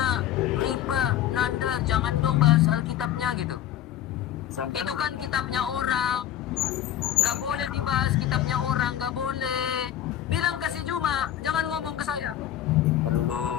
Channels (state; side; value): quieter; right; 11.5 dB